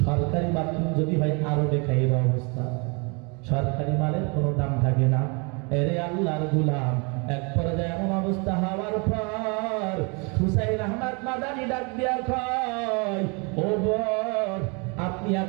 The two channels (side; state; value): left; quieter; 32.2 dB